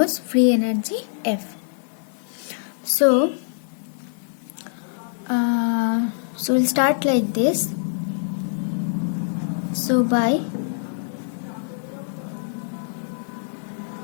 free energy F. So we'll start like this. So by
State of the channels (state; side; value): silent; right; digital silence